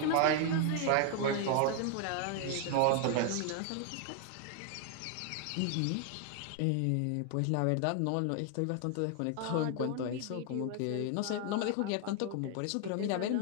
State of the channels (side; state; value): both; different; correlation 0.00